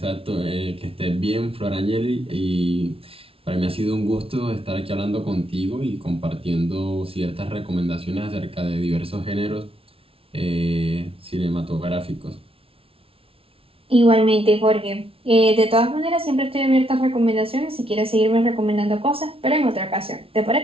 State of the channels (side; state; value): left; late; 0.27 ms